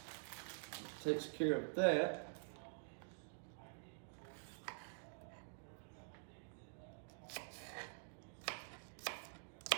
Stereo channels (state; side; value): silent; left; digital silence